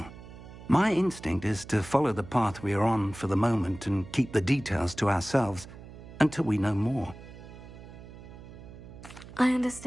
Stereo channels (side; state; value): right; noise; hum, 16 dB below the sound